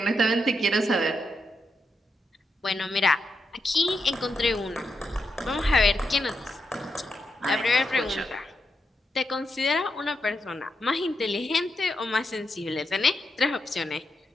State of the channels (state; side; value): normal; both; correlation 0.84